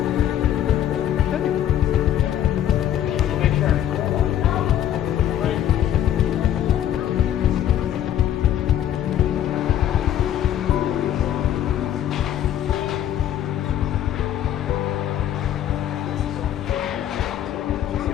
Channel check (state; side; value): quieter; right; 11.1 dB